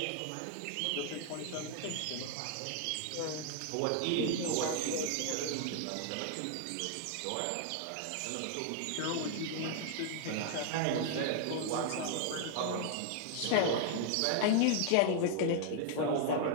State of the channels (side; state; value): both; different; correlation 0.00